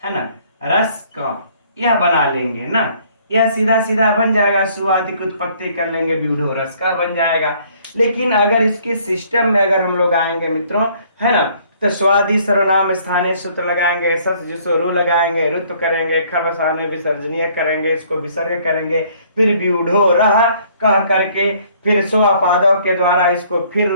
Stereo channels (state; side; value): inverted; both; correlation -0.61